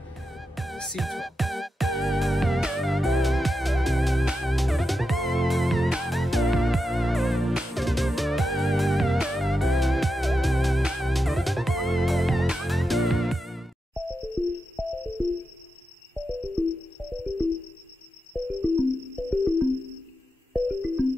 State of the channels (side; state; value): both; normal; correlation 0.88